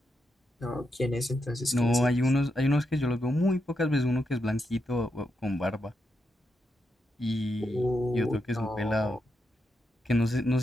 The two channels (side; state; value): both; normal; correlation 0.84